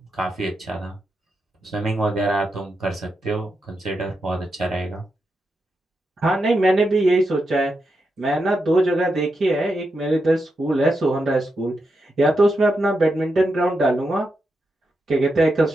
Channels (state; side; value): normal; both; correlation 0.85